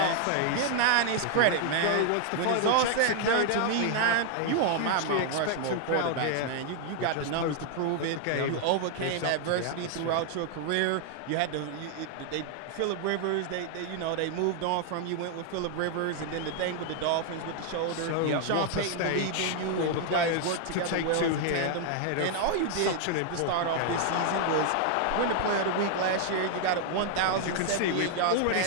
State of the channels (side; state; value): both; different; correlation 0.00